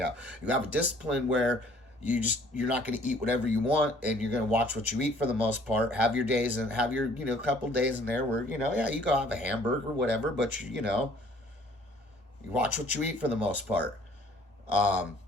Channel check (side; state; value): both; normal; correlation 0.57